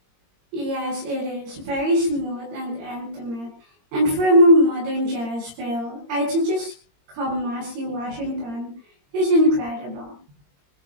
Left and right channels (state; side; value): late; left; 22 ms